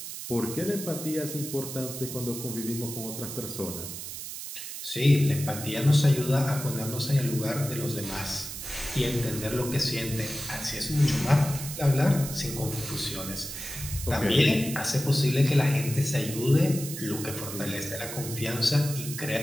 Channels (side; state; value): right; noise; hiss, 8 dB below the sound